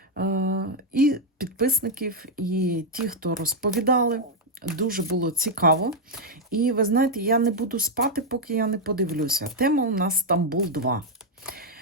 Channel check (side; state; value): both; normal; correlation 0.00